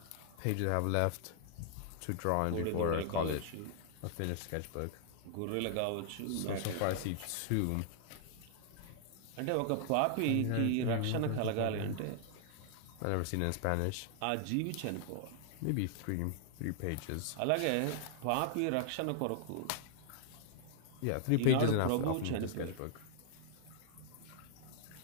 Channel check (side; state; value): both; different; correlation -0.01